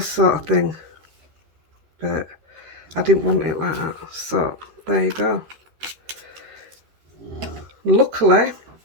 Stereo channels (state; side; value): late; left; 13 ms